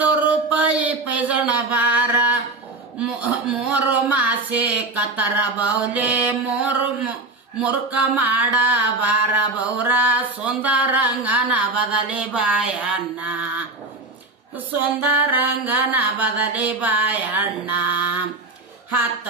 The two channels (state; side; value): quieter; left; 3.0 dB